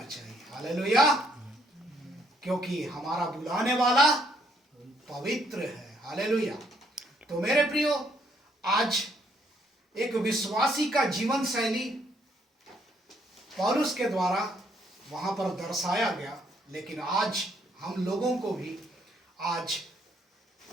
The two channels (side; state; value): both; normal; correlation 0.69